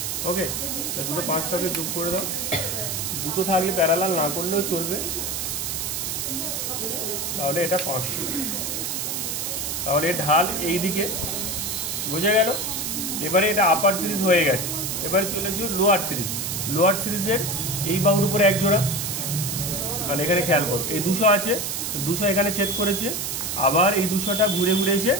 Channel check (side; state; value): right; noise; hiss, 2 dB below the sound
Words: ওকে, দুটো 500কে যোগ করে দাও। দুটো থাকলে প্যারালাল না করলেও চলবে, তাহলে এটা 500। তাহলে ঢাল এই দিকে, বোঝা গেল? এবারে এটা আপার সিরিজ হয়ে গেছে, এবারে চলে এসো লোয়ার সিরিজ। লোয়ার সিরিজের এই বাহুর উপরে এক জোড়া, তাহলে এখানে খেয়াল করো, এই 200 আছে, 200 এখানে ছেদ করেছে, আবার এই 200টা ঘুরে ঘুরে এসে